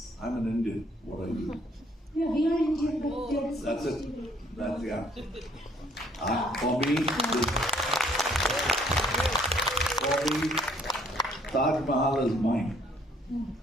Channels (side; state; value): both; normal; correlation 0.63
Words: I'm an Indian. What are you? Yeah, we are Indian, but there is That's much it. debate. That's the answer. For me, Taj Mahal is mine,